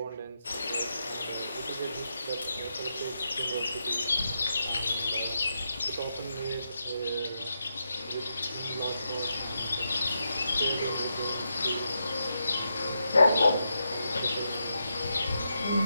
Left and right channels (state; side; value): inverted; both; correlation -0.84